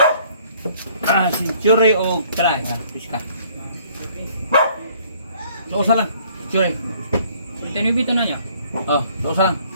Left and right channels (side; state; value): both; inverted; correlation -0.60